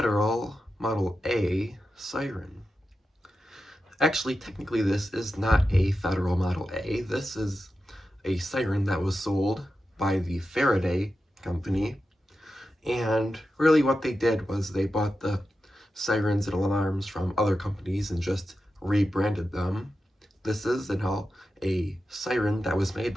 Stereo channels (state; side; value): normal; both; correlation 0.91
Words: Model A siren. Actually, technically this is not a Federal Model A. This is a siren that was sold by the Faraday company. And really what they did was they bought the sirens and alarms from other companies and just rebranded them. This is a siren that was made